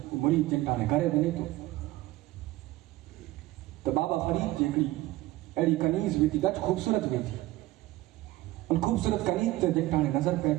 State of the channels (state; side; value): quieter; left; 17.7 dB